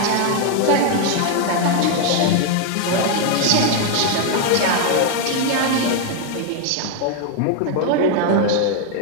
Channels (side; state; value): both; different; correlation 0.01